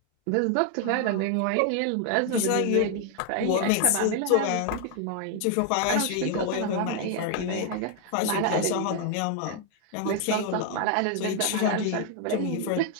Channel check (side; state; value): both; different; correlation 0.00